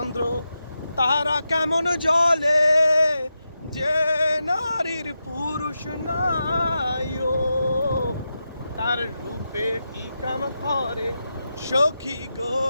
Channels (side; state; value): both; inverted; correlation -0.89